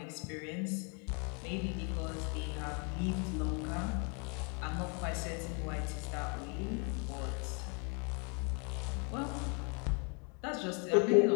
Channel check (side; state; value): right; quieter; 35.3 dB